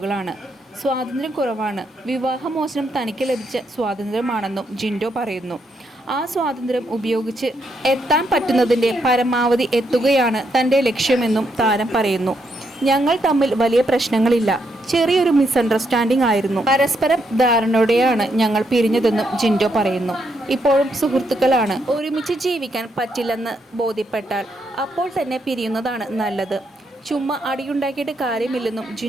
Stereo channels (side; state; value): both; normal; correlation 0.78